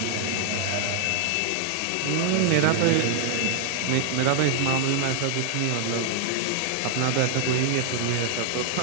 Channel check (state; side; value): different; both; correlation -0.01